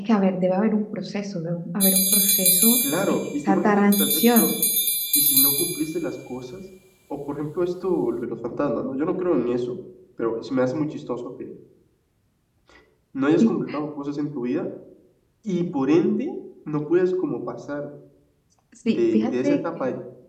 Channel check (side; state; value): both; identical; correlation 1.00